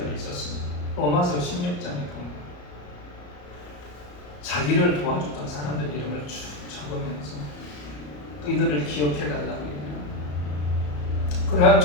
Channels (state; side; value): late; right; 34 ms